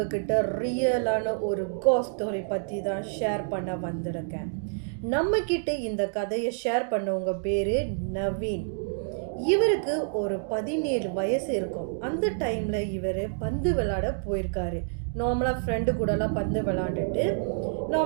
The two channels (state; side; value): silent; left; digital silence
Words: ரியலான ஒரு கோஸ்ட் ஸ்டோரி பற்றி தான் ஷேர் பண்ண வந்திருக்கேன். நம்ம கிட்ட இந்த கதையை ஷேர் பண்ணவங்க பேர் நவீன். இவருக்கு ஒரு 17 வயசு இருக்கும். அந்த டைமில் இவர் பந்து விளையாட போயிருக்காரு. நார்மலாக ஃப்ரெண்டு கூடலாம் பந்து விளையாண்டுட்டு